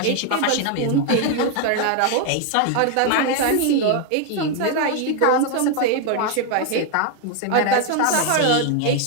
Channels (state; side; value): different; both; correlation 0.00